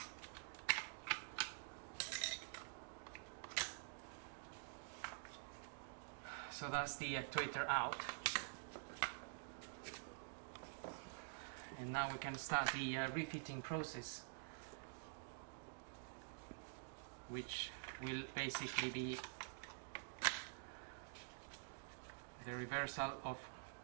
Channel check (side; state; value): left; silent; digital silence